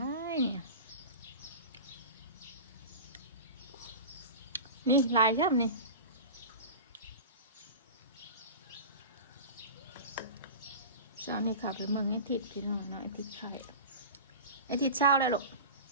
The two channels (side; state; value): both; inverted; correlation -0.32